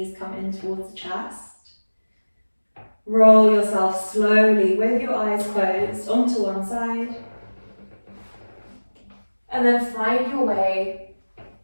come in towards the chest. Roll yourself slowly with your eyes closed onto one side. And then find your way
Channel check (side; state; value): both; inverted; correlation -1.00